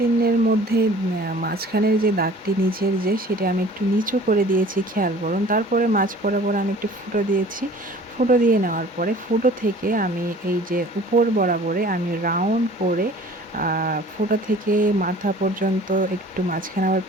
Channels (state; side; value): normal; both; correlation 0.48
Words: মধ্যে মাঝখানের যে দাগটি নিচের সেটা আমি একটু নিচু করে দিয়েছি, খেয়াল করুন। তারপরে মাঝ বরাবর আমি একটু ফুটো দিয়েছি। ফুটো দিয়ে নেওয়ার পরে ফুটো থেকে আমি এই যে উপর বরাবরে আমি রাউন্ড করে ফুটো থেকে মাথা পর্যন্ত একটু মাঝখানে আবার